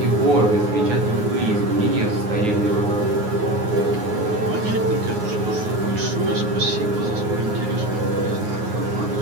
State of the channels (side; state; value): left; late; 9.5 ms